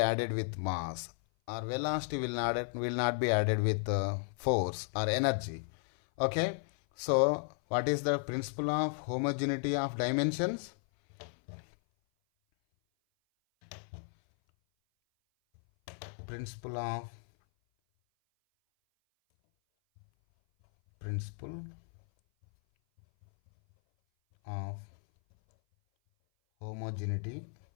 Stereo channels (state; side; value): silent; right; 55 dB below the other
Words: with mass, or velocity will not be added with force or energy. Okay, so what is the principle of homogeneity of dimensions? Principle of homogeneity